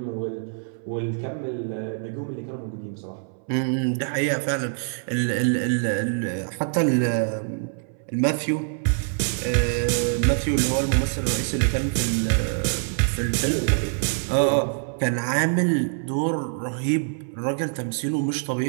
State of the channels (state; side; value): silent; left; 62 dB below the other